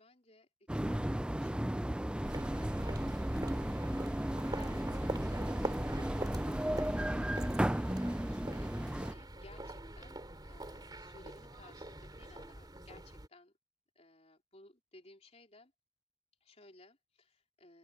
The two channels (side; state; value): both; normal; correlation 0.94